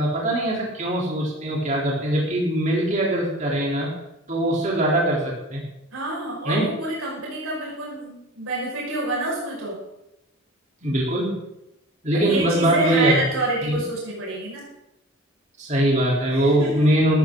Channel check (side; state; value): both; normal; correlation 0.42